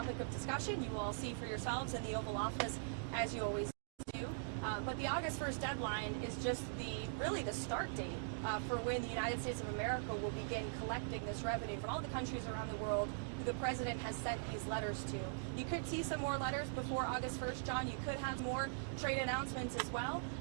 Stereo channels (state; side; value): silent; left; digital silence